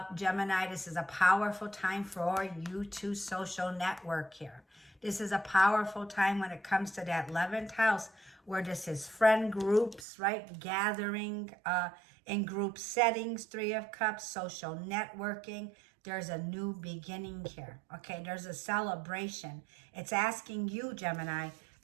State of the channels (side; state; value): left; drops out; at 10.1 s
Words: Gemini, this is a powerful time for you to social network here. This is a powerful time when it comes to that 11th house, where this is friend groups, right? Gathering in group settings, Three of Cups, social networking. There's a new beginning here, okay? There's a celebration. It's asking you, Gemini,